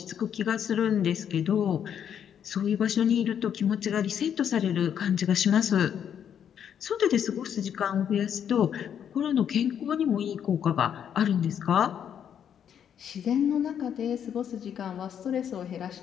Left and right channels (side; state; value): right; quieter; 8.8 dB